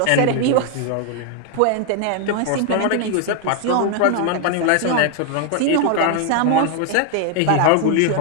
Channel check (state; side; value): different; both; correlation 0.01